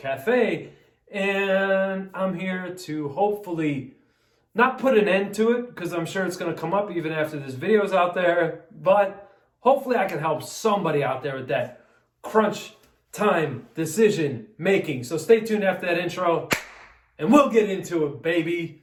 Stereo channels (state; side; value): identical; both; correlation 1.00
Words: And I'm here to hopefully not put an end to it, because I'm sure it's going to come up even after this video is out there, but hopefully I can help somebody out there with that crunch time decision making. So stay tuned after that intro and we'll get into it, baby.